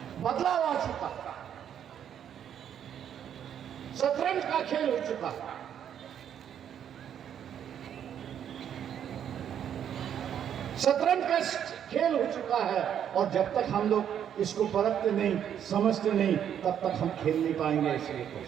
बदलाव आ चुका, शतरंज का खेल हो चुका। शतरंज का खेल हो चुका है और जब तक हम लोग इसको परखते नहीं, समझते नहीं, तब तक हम खेल नहीं पाएंगे। इसलिए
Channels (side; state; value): left; quieter; 9.3 dB